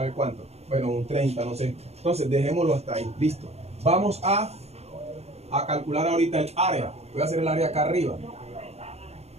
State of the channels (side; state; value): left; late; 0.31 ms